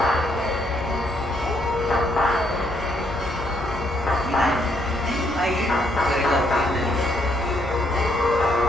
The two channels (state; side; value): normal; both; correlation 0.73